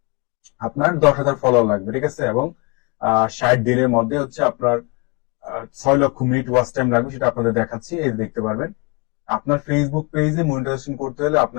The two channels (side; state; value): right; quieter; 28.7 dB